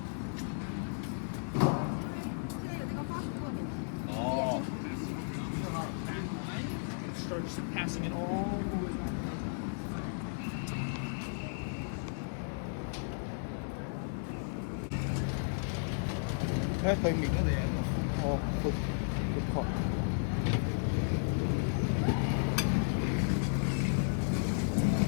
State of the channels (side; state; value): right; silent; digital silence